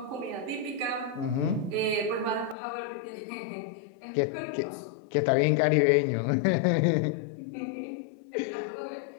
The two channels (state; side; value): drops out; right; at 2.6 s